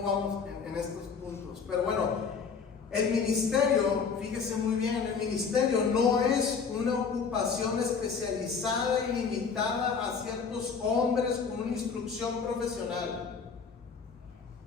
vamos en estos puntos. Pero bueno, el ministerio, fíjese muy bien, el ministerio no es una ocupación especializada y limitada a ciertos hombres con una instrucción profesional.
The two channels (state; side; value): quieter; right; 5.7 dB